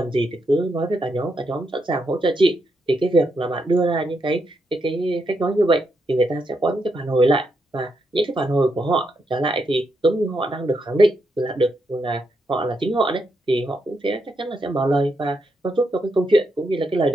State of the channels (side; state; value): both; normal; correlation 0.81